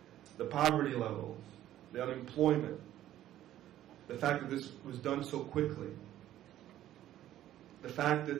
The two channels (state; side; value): quieter; left; 12.9 dB